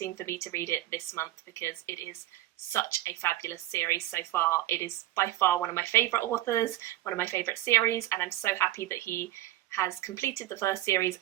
for me to read it this month, because it is such a fabulous series so far. It is by far one of my favourite authors, one of my favourite series, and I'm so happy that he has completed the first series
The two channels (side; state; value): left; quieter; 14.7 dB